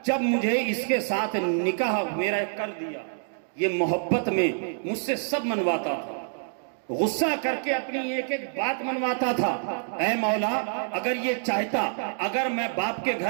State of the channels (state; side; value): silent; left; digital silence